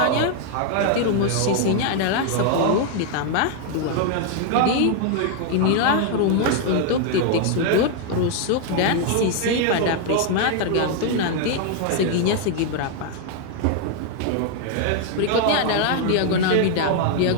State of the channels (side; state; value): both; different; correlation 0.00